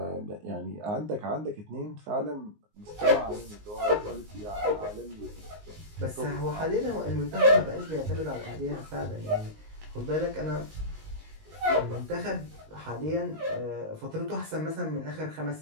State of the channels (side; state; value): left; late; 19 ms